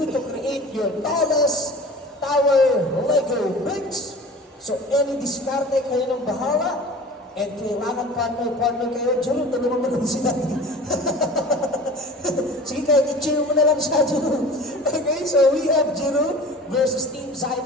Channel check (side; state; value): both; normal; correlation 0.40